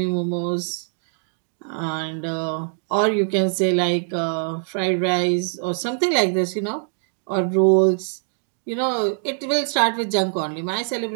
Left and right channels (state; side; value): silent; left; digital silence